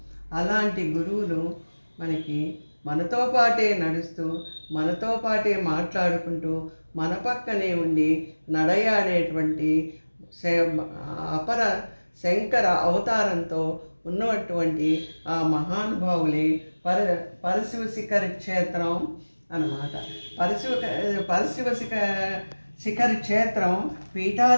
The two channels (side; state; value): both; inverted; correlation -1.00